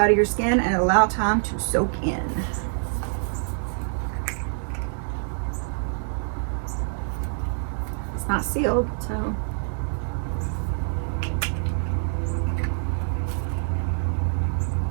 to your skin and allow time to soak in. It's not sealed, so.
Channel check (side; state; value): left; silent; 61 dB below the other